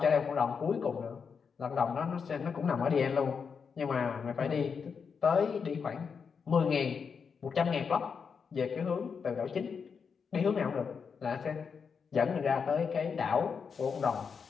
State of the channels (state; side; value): quieter; right; 6.0 dB